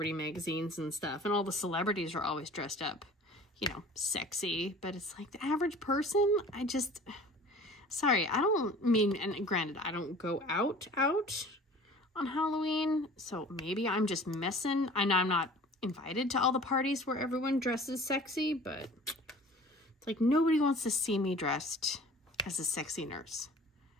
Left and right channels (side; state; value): both; normal; correlation 0.45